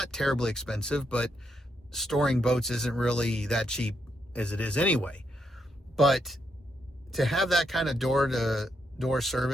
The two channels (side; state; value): both; normal; correlation 0.78